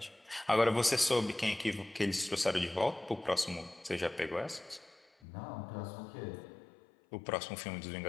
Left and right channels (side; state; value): right; drops out; at 5.1 s